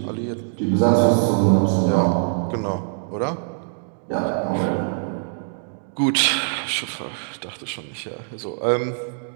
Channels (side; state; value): left; silent; digital silence